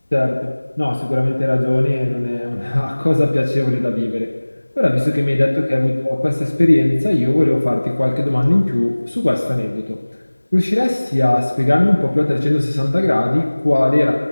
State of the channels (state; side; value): inverted; both; correlation -1.00